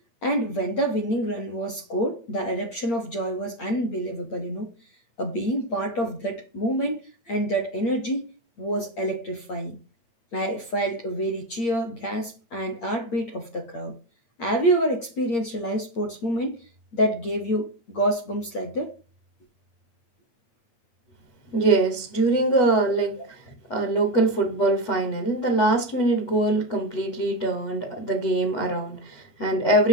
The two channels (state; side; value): late; right; 8.7 ms